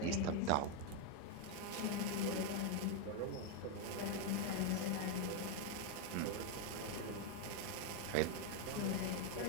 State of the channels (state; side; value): different; both; correlation 0.01